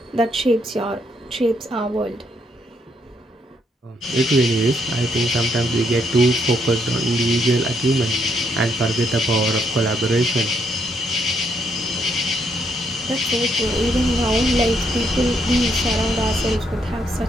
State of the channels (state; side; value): normal; both; correlation 0.74